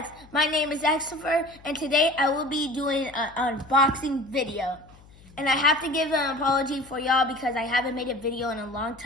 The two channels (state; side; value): noise; left; hum, 24 dB below the sound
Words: My name is Xfer, and today I will be doing an unboxing video. And I have to give an apology for y'all because I haven't made a video in a long